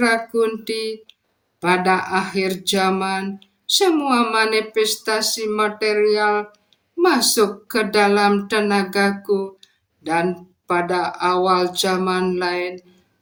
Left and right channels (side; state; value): both; identical; correlation 1.00